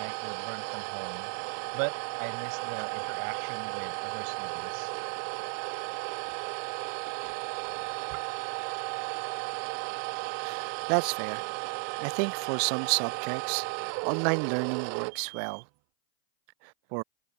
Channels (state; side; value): silent; left; 55 dB below the other